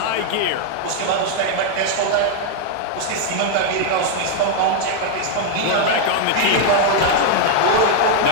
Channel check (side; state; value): both; different; correlation 0.00